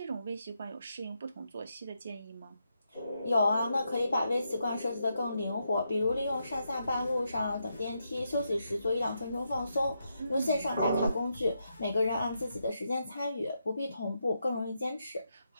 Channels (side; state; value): both; inverted; correlation -0.82